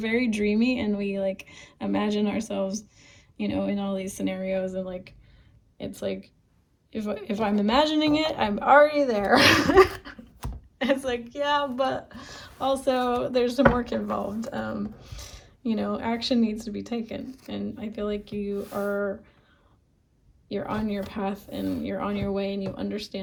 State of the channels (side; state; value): both; identical; correlation 1.00